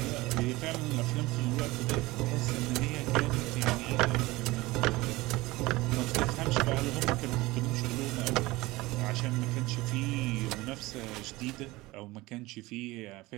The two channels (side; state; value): left; quieter; 20.4 dB